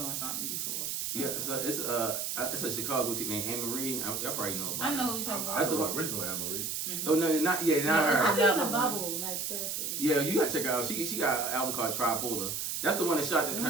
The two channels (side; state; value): right; noise; hiss, 2 dB below the sound